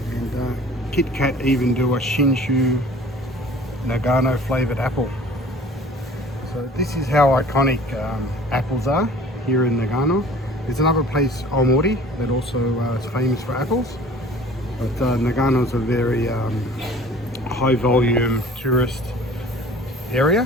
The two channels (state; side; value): normal; both; correlation 0.47